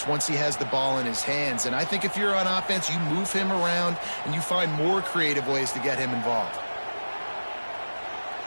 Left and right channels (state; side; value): inverted; both; correlation -1.00